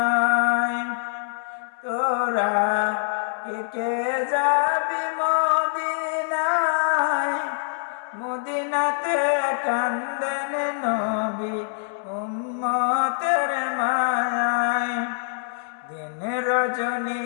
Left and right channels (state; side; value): silent; right; 60 dB below the other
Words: তোরা কে কে যাবি মদিনায়, মদিনাতে কান্দেন নবী উম্মতের মায়ায়। দিন রজনী